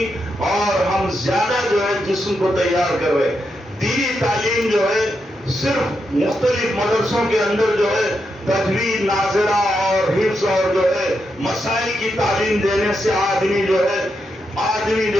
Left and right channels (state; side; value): normal; both; correlation 0.84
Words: اور ہم زیادہ جو ہے جسم کو تیار کر رہے ہیں۔ دینی تعلیم جو ہے صرف مختلف مدرسوں کے اندر جو ہے تجوید، ناظرہ اور حفظ اور جو ہے مسائل کی تعلیم دینے سے آدمی جو